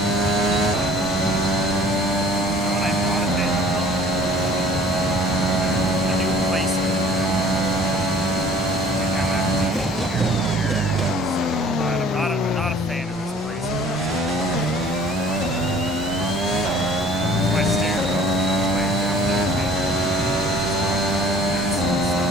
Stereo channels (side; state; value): both; normal; correlation 0.51